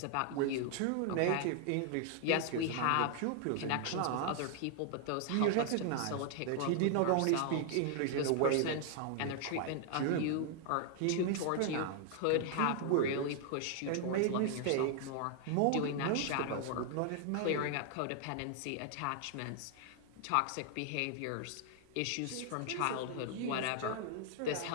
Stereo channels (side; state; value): both; different; correlation 0.00